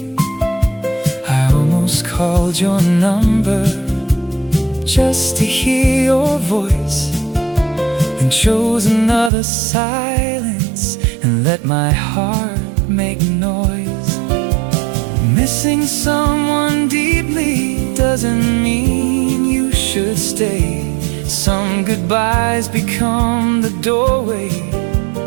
I almost called your number just to hear your voice, and chose another silence and let my heart make noise. Missing someone deeply doesn't mean you should stay. Some goodbyes become the doorway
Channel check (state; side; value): drops out; left; at 9.3 s